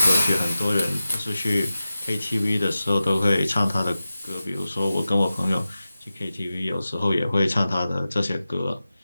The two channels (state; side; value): inverted; both; correlation -0.95